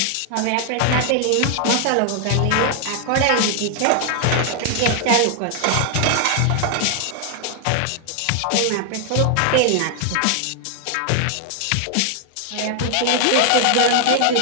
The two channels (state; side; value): different; both; correlation 0.00